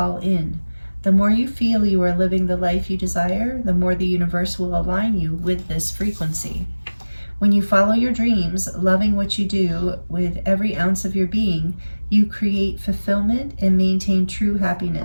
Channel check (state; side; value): inverted; both; correlation -1.00